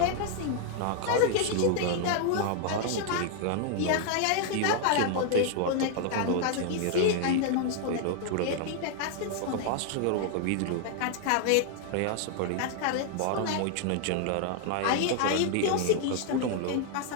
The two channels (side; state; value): both; different; correlation 0.00